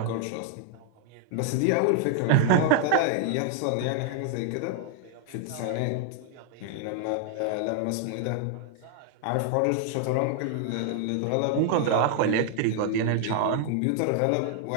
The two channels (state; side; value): different; both; correlation 0.00